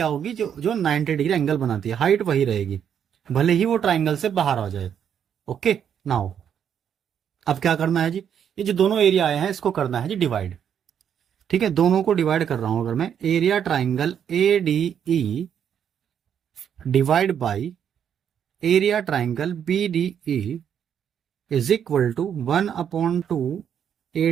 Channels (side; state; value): left; quieter; 8.6 dB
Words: होगी, जो जो 90 डिग्री एंगल बनाती है, हाइट वही रहेगी, भले ही वो ट्राइंगल से बाहर आ जाए। ओके, नाउ अब क्या करना है जी, ये जो दोनों एरिया आए हैं इसको करना है जी डिवाइड। ठीक है, दोनों को डिवाइड कर रहा हूं अगर मैं, area triangle A D E divide by area triangle B D E is equal to 1/2